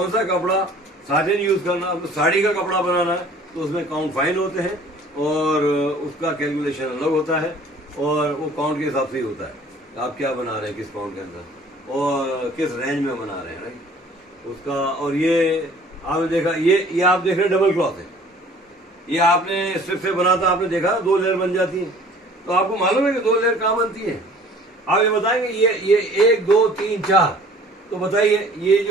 सा कपड़ा साटिन यूज करना, तो साड़ी का कपड़ा बनाना है तो उसमें काउंट फाइन होते हैं, और उसका कैलकुलेशन अलग होता है, और वो काउंट के हिसाब से ही होता है आप क्या बना रहे हैं, किस काउंट के अंदर और किस रेंज में बना रहे हैं, राइट उसका। और ये आपने देखा, ये आप देख रहे हैं डबल क्लॉथ है, ये आपने स्ट्रिप से बना था, आपने देखा 2 लेयर बन जाती है। तो आपको मालूम है कि 2 लेयर कहाँ बनती है, आप ये बताएंगे ये 1 2 3 4, तो बताइए ये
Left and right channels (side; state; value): both; normal; correlation 0.51